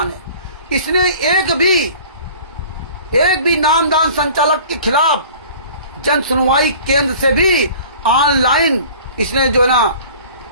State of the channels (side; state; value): both; inverted; correlation -0.46